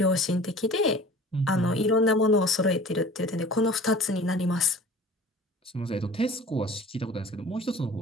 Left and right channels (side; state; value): both; normal; correlation 0.44